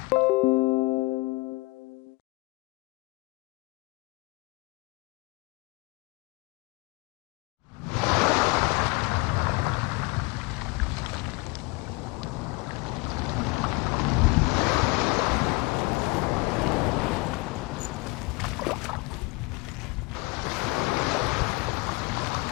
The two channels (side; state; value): right; quieter; 25.1 dB